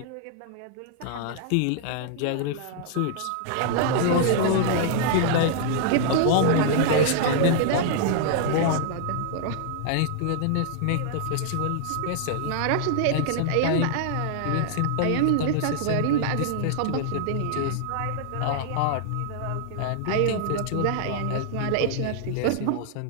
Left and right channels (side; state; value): both; different; correlation -0.01